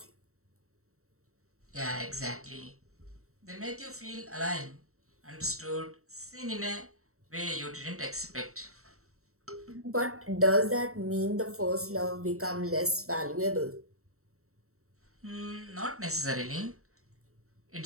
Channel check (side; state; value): left; late; 0.64 ms